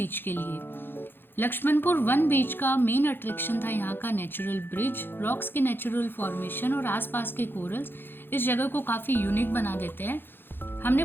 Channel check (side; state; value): right; late; 0.10 ms